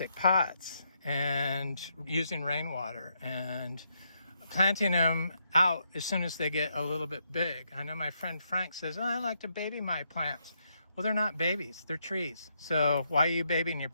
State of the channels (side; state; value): both; inverted; correlation -0.78